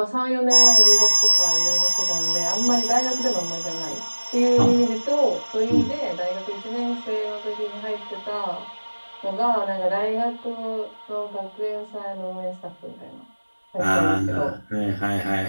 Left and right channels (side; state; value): both; inverted; correlation -1.00